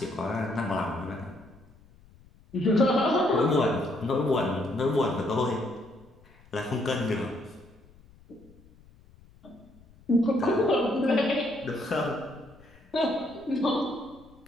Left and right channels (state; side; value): noise; left; rumble, 26 dB below the sound